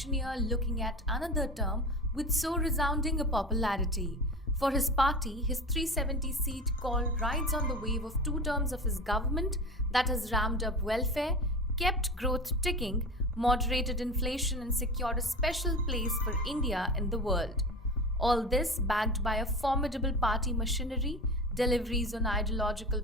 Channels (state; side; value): normal; both; correlation 0.31